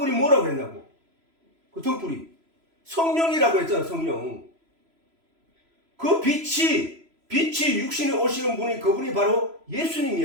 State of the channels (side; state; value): left; late; 3.0 ms